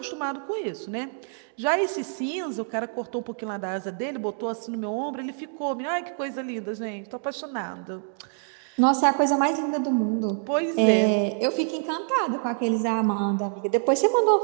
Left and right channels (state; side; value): silent; left; digital silence